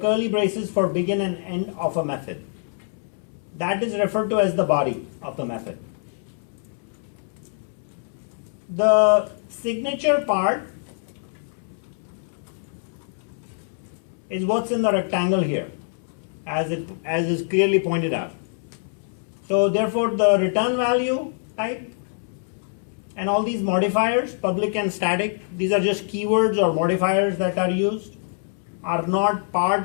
braces for begin and end of a method. That is referred to as the body of the method. The signature part is what's in the rectangle here, as is clearly pointed out. So therefore the return value type and all these modifiers, public and static, these are just keywords or modifiers that are used, are not part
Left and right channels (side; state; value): right; silent; 62 dB below the other